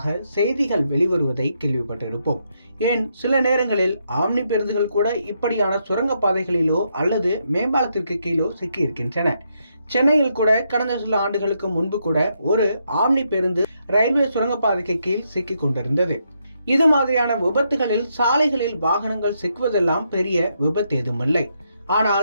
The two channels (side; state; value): both; inverted; correlation -0.78